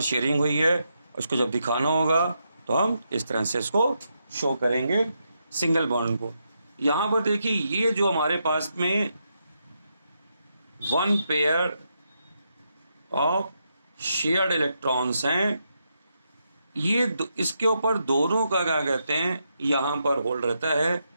शेयरिंग हुई है, उसको जब दिखाना होगा तो हम इस तरह से इसको शो करेंगे सिंगल बॉन्ड को। यहाँ पर देखिए ये जो हमारे पास में 1 पेयर ऑफ शेयर्ड इलेक्ट्रॉन्स हैं, ये इसके ऊपर दोनों का क्या कहते हैं यहाँ पर होल्ड रहता है।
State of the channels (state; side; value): inverted; both; correlation -0.82